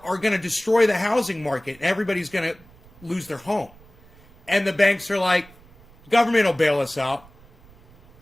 to destroy the housing market, and everybody's going to lose their home. And the banks are like, government will bail us out.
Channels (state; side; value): noise; right; rumble, 26 dB below the sound